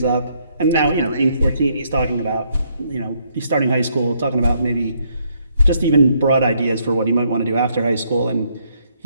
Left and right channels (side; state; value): both; inverted; correlation -0.71